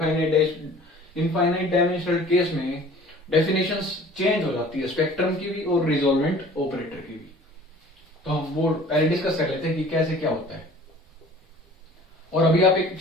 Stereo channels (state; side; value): normal; both; correlation 0.48